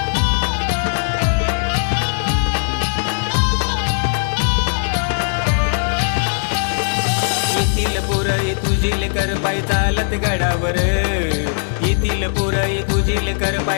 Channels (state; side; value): silent; right; digital silence